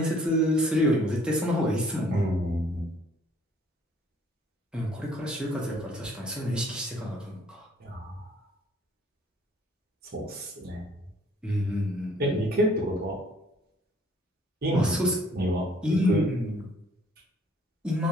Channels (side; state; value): both; normal; correlation 0.60